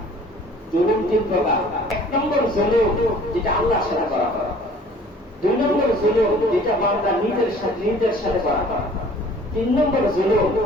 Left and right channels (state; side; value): normal; both; correlation 0.51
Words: জুলুম তিন প্রকার। এক নম্বর জুলুম যেটা আল্লাহর সাথে করা হয়। দুই নম্বর জুলুম যেটা বান্দা নিজের সাথে করা হয়। তিন নম্বর জুলুম